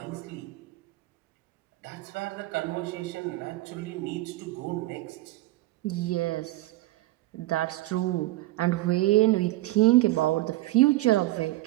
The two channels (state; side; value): quieter; left; 17.8 dB